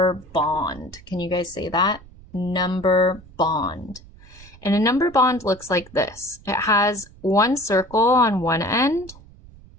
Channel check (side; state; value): right; noise; rumble, 22 dB below the sound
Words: bond. Can you guys say that? Number bond. And a number bond looks like this. It has one circle on one end